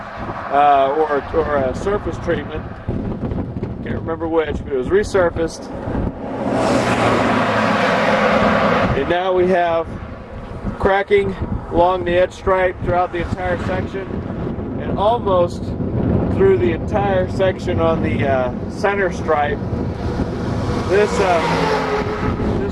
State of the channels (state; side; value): identical; both; correlation 1.00